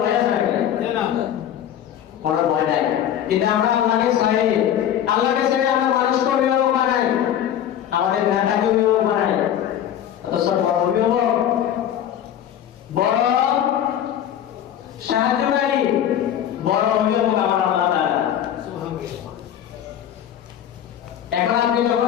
ভয় আছে নাকি? কোনো ভয় নাই। কিন্তু আমরা আল্লাহকে ছেড়ে আমরা মানুষকে অভিভাবক বানাই, আমাদের নেতাকে অভিভাবক বানাই। অথচ বড় অভিভাবক, বড় সাহায্যকারী, বড় অভিভাবক আমার আল্লাহ তাআলা। এখন আমি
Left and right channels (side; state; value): right; quieter; 10.3 dB